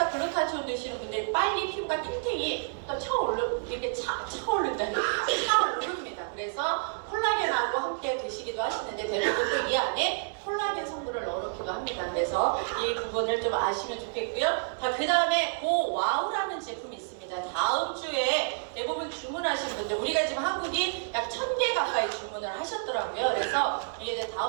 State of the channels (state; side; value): silent; left; 58 dB below the other